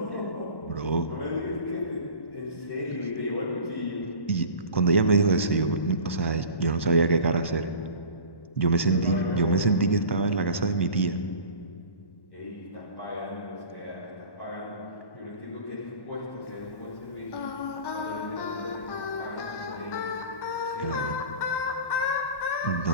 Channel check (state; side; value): late; right; 1.1 ms